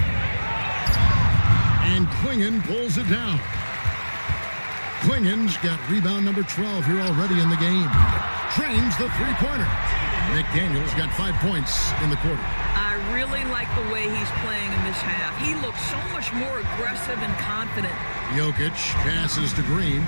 And Klingon pulls it down. Klingon's got rebound number 12 here already in the game. Trains the three-pointer. McDaniels got 5 points in the quarter. I really like the way he's playing in this half. He looks so much more aggressive and confident. Jokic passes to Green.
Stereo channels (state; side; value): inverted; both; correlation -1.00